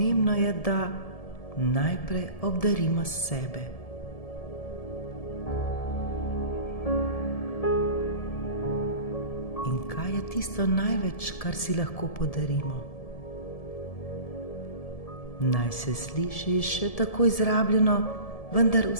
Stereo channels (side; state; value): right; late; 1.7 ms